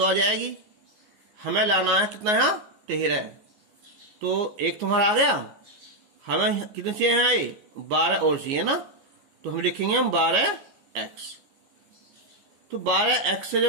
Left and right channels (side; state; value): left; late; 14 ms